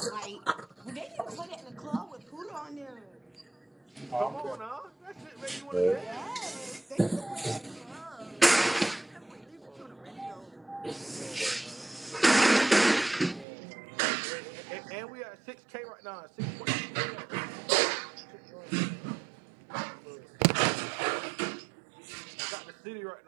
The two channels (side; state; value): left; drops out; at 13.5 s